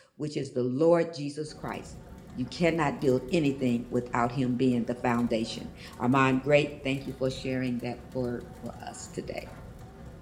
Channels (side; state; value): both; identical; correlation 1.00